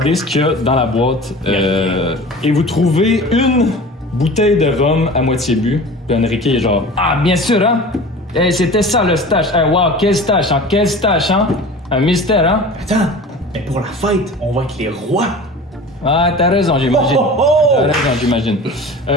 ce qu'il y a dans la boîte et vous trouvez une bouteille de rhum à moitié bu. Puis Enrique est genre ah bien sûr hein. Eh, c'était ça le stash. Eh, wow quel stash hein. Un mystère hein. Attends, mais pour la fête, on va être les rois. Ah t'as raison j'imagine. T'as raison j'imagine.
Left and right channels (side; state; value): both; normal; correlation 0.38